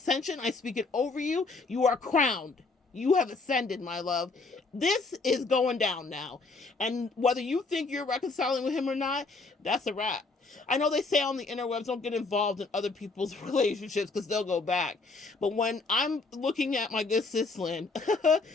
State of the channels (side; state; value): right; quieter; 3.8 dB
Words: I speak it over you. You are crowned. You have ascended, my love. This is going down now. And whether you think you're reconciling with him or not, that's a wrap. I know they say on the interwebs, don't get involved in other people's relationships because they'll go back. But when I'm looking at my good sis Lynn,